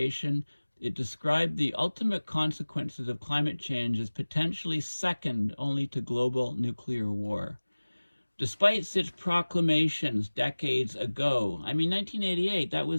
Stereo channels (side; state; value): both; inverted; correlation -1.00